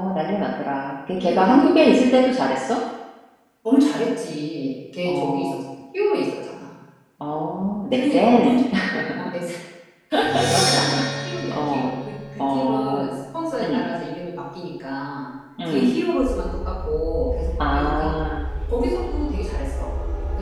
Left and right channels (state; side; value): identical; both; correlation 1.00